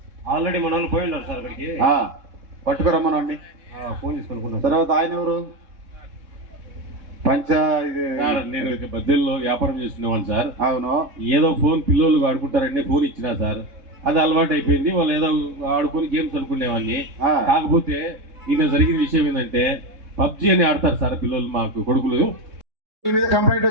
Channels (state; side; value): late; left; 3.7 ms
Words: ఆల్రెడీ మన వాళ్ళు పోయి ఉన్నారు సార్ అక్కడికి. పట్టుకురమ్మనండి. ఫోన్ తీసుకున్నాను. తర్వాత ఆయన ఎవరు? నేను బద్దెల్లో వ్యాపారం చేస్తున్నాను సార్. అవును. ఏదో ఫోన్ పిల్లలు ఆడుకుంటారండి, ఫోన్ ఇచ్చినా సార్, అది అలవాటు అయిపోయింది. వాళ్ళు ఏదో ఆడుకుని గేమ్స్ అనుకునేవాడిని. కాకపోతే ఈయన జరిగిన విషయం ఏంటంటే పబ్జి అని ఆడతారు సార్ పిల్లలు, మాకు కొడుకులు. మీ మీద కంప్లైంట్